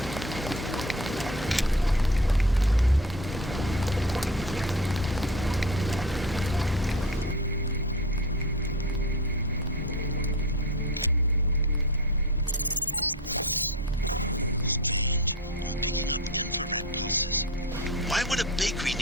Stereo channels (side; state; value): both; normal; correlation 0.30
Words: Why would a bakery